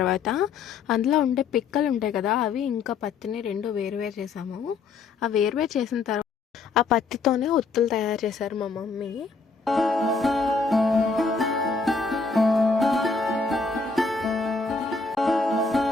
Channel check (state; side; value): quieter; right; 4.4 dB